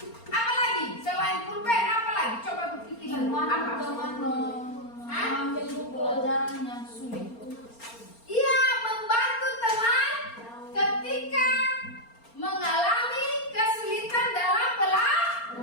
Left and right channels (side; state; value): right; late; 4.3 ms